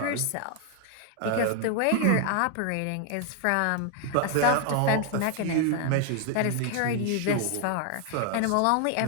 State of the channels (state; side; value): different; both; correlation 0.00